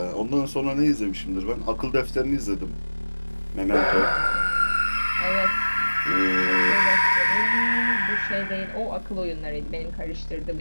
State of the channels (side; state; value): both; inverted; correlation -1.00